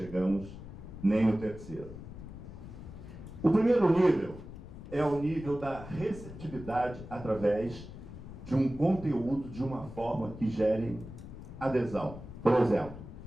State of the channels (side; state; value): left; noise; rumble, 13 dB below the sound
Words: nem no terceiro. O primeiro nível é o nível da receptividade através de um conteúdo de uma forma que gere adesão. Por exemplo,